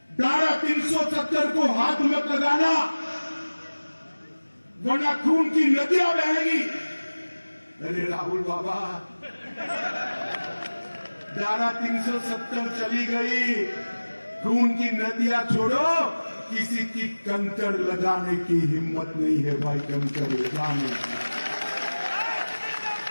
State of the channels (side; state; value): both; inverted; correlation -1.00